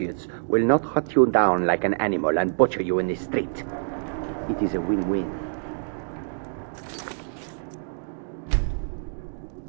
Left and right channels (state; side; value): silent; left; digital silence